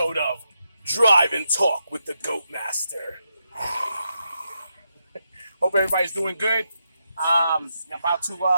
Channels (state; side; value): inverted; both; correlation -0.83